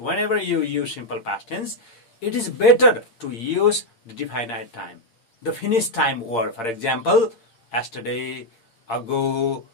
you use simple past tense, it is better to use the definite time, the finished time word. For example, yesterday, ago,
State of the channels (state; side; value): late; right; 8.7 ms